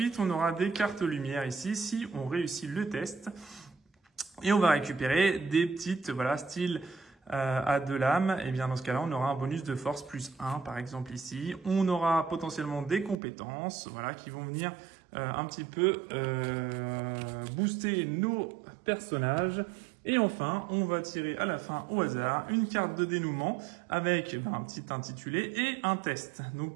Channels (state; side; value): drops out; left; at 13.2 s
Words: on aura des cartes lumière ici, si on réussit le test. Et on va récupérer des petites, voilà, style à 2 lames, et bien dans ce cas-là, on aura un bonus de force +1, par exemple ici. On aura potentiellement des compétences, voilà, qui vont venir un petit peu booster nos personnages. Et enfin, on va tirer à la fin au hasard une carte de dénouement avec un petit intitulé et un test. Donc